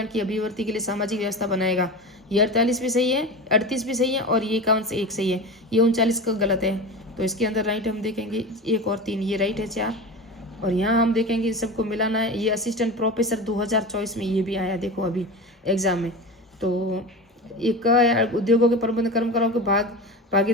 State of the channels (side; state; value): both; normal; correlation 0.27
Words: की अभिवृद्धि के लिए सामाजिक व्यवस्था बनाएगा, ये 48 भी सही है, 38 भी सही है, और ये 51 से 1 सही है। ये 39 का गलत है, तो इसके अंदर राइट हम देखेंगे 1 और 3, ये राइट है 4। और यहाँ हम देखेंगे सबको मिलाना है। ये असिस्टेंट प्रोफेसर 2024 में ये भी आया, देखो अभी एग्जाम में। तो एक उद्योगों के प्रबंध कर्मकारों के